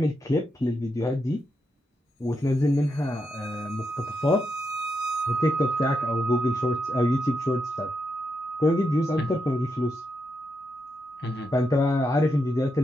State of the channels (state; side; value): normal; both; correlation 0.84